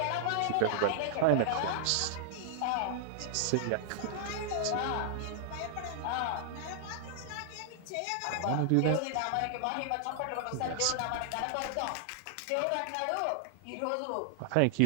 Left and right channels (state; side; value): different; both; correlation -0.01